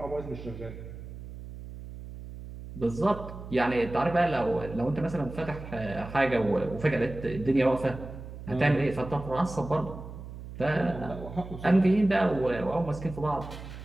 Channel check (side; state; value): right; noise; hum, 12 dB below the sound